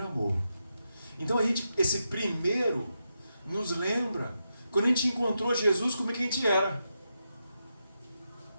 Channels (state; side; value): inverted; both; correlation -0.86